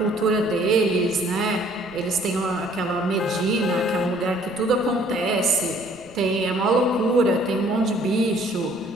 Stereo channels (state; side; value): noise; right; rumble, 26 dB below the sound